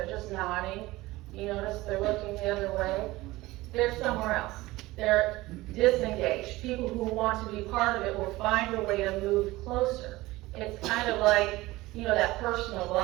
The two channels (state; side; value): quieter; left; 19.2 dB